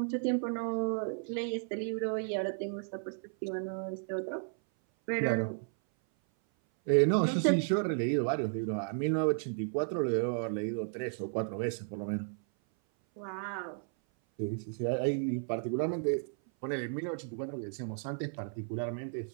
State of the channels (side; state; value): left; silent; 55 dB below the other